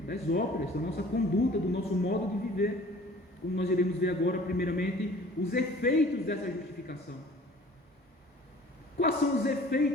das obras, da nossa conduta, do nosso modo de viver, como nós iremos ver agora, primeiramente, os efeitos dessa justificação. Quais são os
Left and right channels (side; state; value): both; normal; correlation 0.49